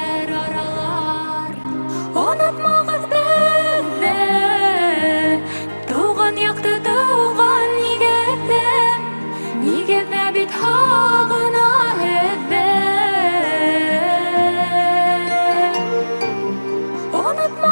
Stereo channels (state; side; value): inverted; both; correlation -1.00